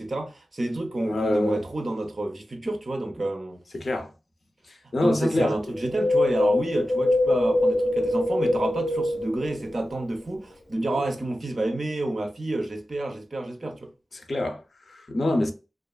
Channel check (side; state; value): both; normal; correlation 0.93